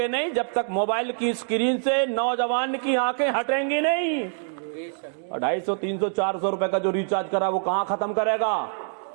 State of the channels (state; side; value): silent; left; digital silence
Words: نہیں, جب تک موبائل کی اسکرین سے نوجوان کی آنکھیں ہٹیں گی نہیں. 250 300 400 روپے کا جو ریچارج کرا وہ کہاں ختم کرے گا؟